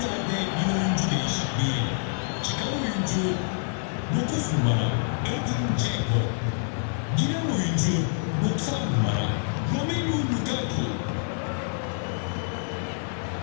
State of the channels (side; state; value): right; silent; 60 dB below the other